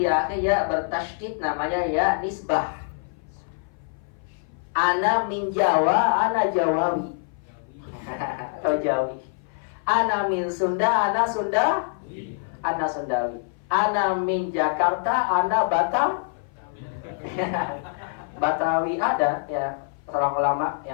akhir ya bertasydid, namanya ya nisbah. Ana min Jawa, ana Jawawi. Atau Jawi. Ana min Sunda, ana Sunda, ana Sundawi. Ana min Jakarta, ana Batam. Batawi ada ya, seorang ulama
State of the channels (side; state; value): right; silent; 57 dB below the other